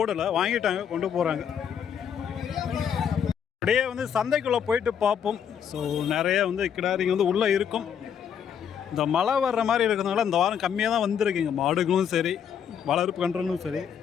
வாங்கிட்டாங்க, கொண்டு போகிறாங்க. அப்படியே வந்து சந்தைக்குள்ளே போயிட்டு பார்ப்போம். ஸோ நிறைய வந்து கிடாரிங்க வந்து உள்ளே இருக்கும். இந்த மழை வர்ற மாதிரி இருக்கிறதுனால இந்த வாரம் கம்மியாக தான் வந்திருக்குங்க. மாடுகளும் சரி, வளர்ப்பு கன்றுகளும் சரி,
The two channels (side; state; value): right; quieter; 8.2 dB